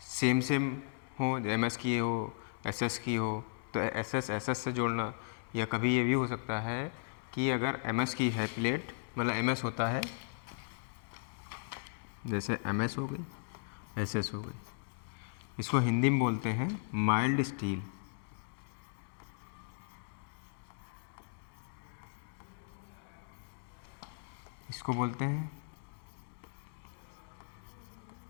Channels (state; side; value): silent; right; digital silence